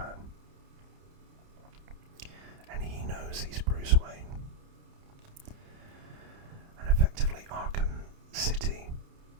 And he knows he's Bruce Wayne. And effectively, Arkham City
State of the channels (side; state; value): left; late; 30 ms